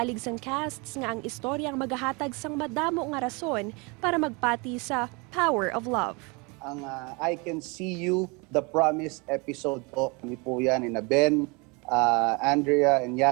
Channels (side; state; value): left; quieter; 29.1 dB